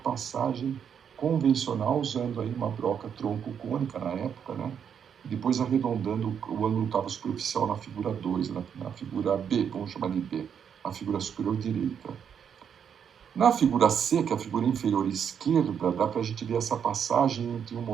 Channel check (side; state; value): left; quieter; 7.9 dB